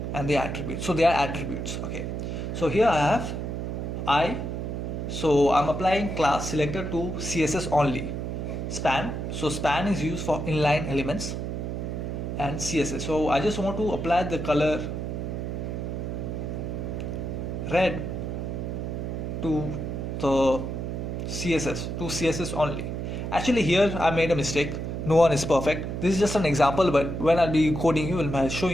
and the attributes. So they are attributes. Okay, so here I have I, so I'm applying class selector to CSS only. Span, so span is used for inline elements and CSS. So I just want to apply the color red to the CSS only. Actually here I made a mistake. No one is perfect. This is just an example, but when I'll be coding you, when I'll show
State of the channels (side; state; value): right; noise; hum, 4 dB below the sound